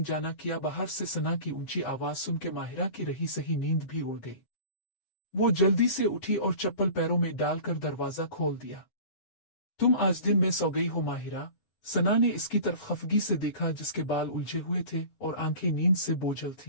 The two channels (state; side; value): late; right; 8.1 ms